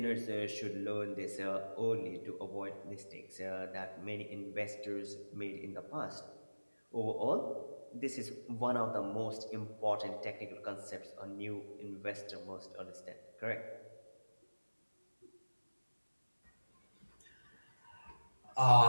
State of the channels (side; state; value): both; inverted; correlation -1.00